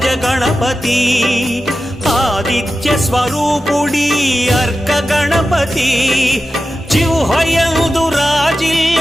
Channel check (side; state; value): both; normal; correlation 0.93